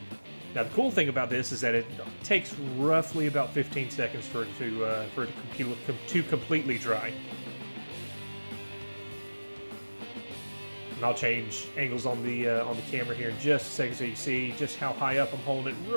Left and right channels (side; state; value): both; inverted; correlation -1.00